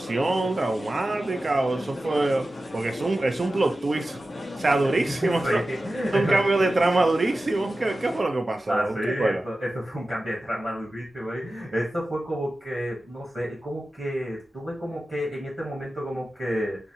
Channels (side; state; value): both; normal; correlation 0.94